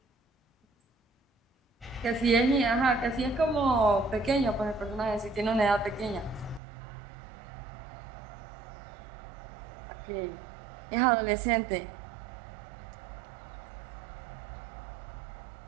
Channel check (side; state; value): left; drops out; at 6.6 s